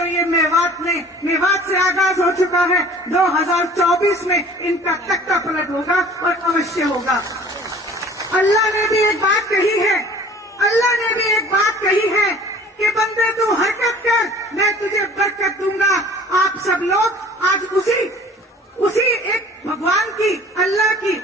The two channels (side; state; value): both; normal; correlation 0.48